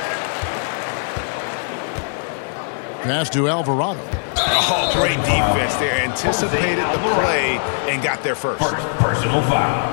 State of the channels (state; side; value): silent; right; 66 dB below the other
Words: Pass to Alvarado. Oh, great defense there. Anticipated the play and got there first. Personal